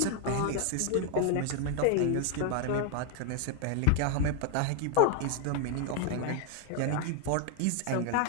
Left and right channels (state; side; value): different; both; correlation 0.00